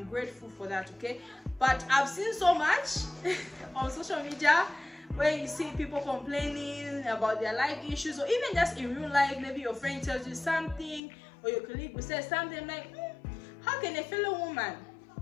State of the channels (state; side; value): drops out; right; at 11.0 s